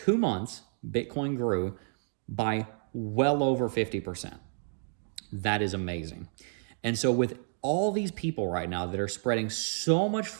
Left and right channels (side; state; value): left; silent; digital silence